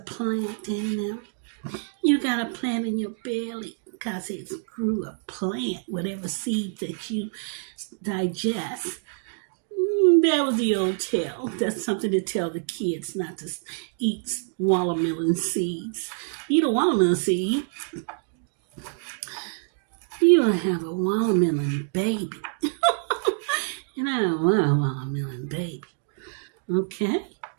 in there. You got a plant in your belly because it grew a plant, whatever seed that you digest. That was the old tale. That's something to tell the kids not to eat watermelon seeds. Eat a watermelon seed, you'll have a watermelon baby. And I don't want a watermelon baby. Okay?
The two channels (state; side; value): silent; left; 59 dB below the other